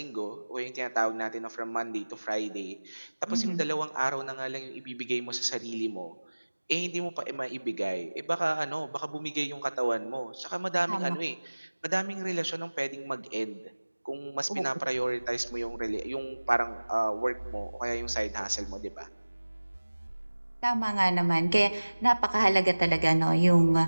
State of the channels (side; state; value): both; inverted; correlation -1.00